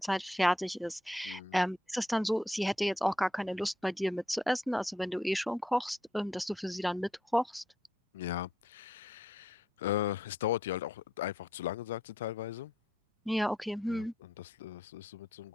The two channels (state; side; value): normal; both; correlation 0.76